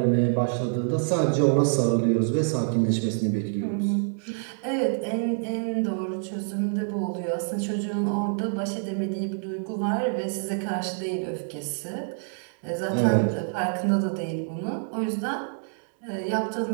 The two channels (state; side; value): silent; left; digital silence